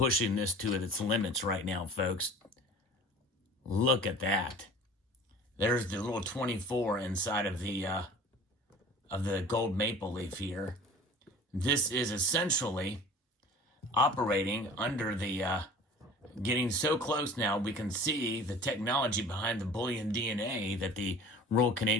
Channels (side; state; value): both; normal; correlation 0.43